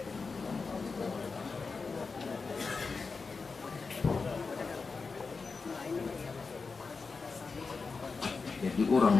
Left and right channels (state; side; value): quieter; right; 4.5 dB